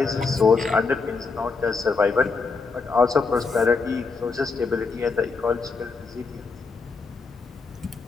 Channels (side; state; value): right; quieter; 4.4 dB